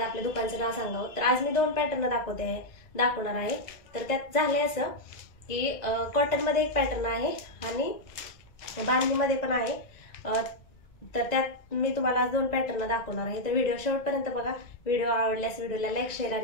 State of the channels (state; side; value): late; right; 1.9 ms